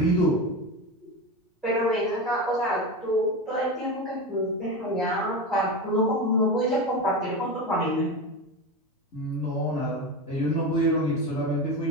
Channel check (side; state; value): both; normal; correlation 0.22